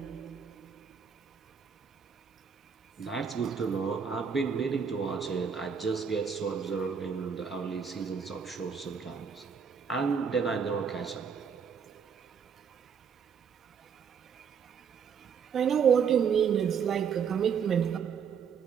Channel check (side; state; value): left; quieter; 6.7 dB